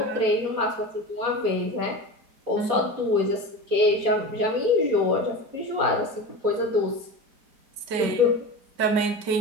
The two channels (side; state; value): left; late; 4.2 ms